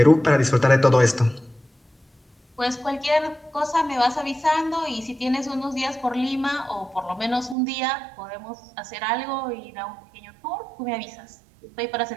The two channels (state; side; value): drops out; left; at 7.6 s